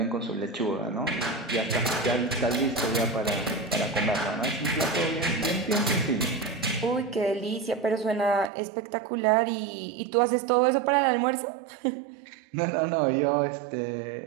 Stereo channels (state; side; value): drops out; left; at 8.5 s